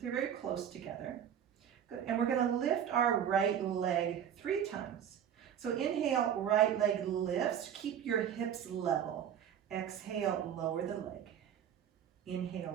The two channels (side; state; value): left; quieter; 9.1 dB